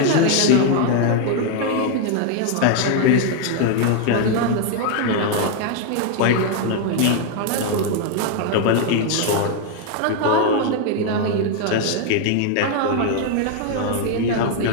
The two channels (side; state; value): both; different; correlation 0.00